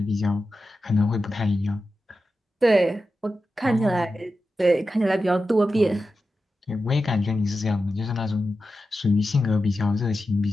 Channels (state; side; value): normal; both; correlation 0.91